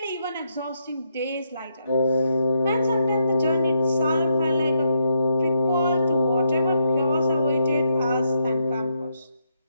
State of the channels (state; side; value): inverted; both; correlation -0.78